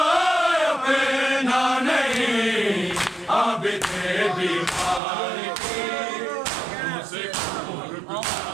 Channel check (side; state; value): left; drops out; at 5.0 s